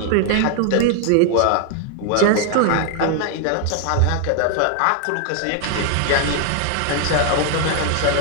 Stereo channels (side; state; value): both; different; correlation 0.00